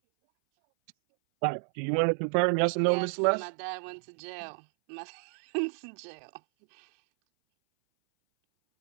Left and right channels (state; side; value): silent; left; 58 dB below the other